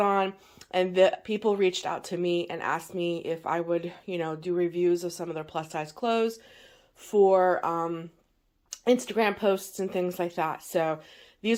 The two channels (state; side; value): identical; both; correlation 1.00